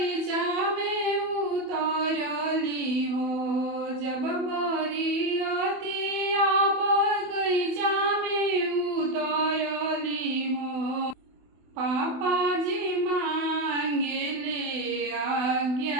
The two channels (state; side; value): late; left; 28 ms